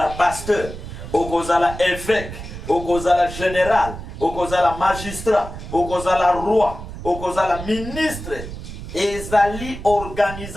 pasteur, okozala évêque, okozala général, okozala magistrat, okozala roi, okozala ministre. Ezali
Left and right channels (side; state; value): right; noise; rumble, 10 dB below the sound